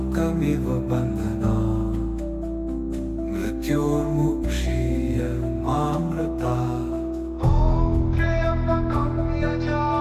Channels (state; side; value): identical; both; correlation 1.00